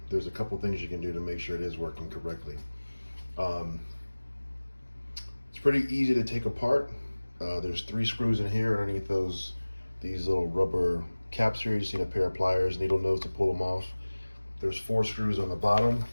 there's a couple things you can do to make sure it is working correctly. Um, it's pretty easy to take apart. There's 3 screws in here underneath these little rubber caps here. You just need a pair of pliers, needle nose to pull them off. There's 4 screws on the bottom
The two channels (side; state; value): both; inverted; correlation -1.00